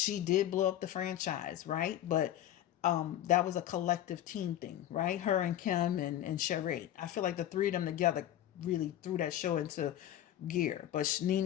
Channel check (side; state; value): right; quieter; 12.1 dB